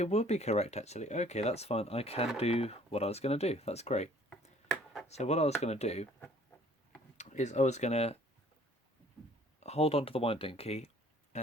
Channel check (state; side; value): normal; both; correlation 0.56